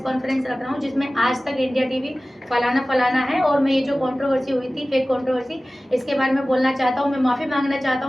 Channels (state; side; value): normal; both; correlation 0.97